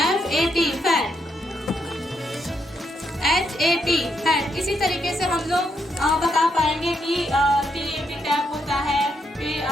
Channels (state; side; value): normal; both; correlation 0.78